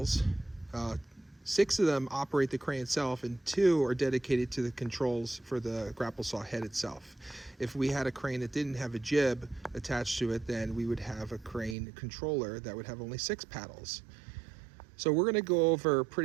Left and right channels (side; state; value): left; drops out; at 11.8 s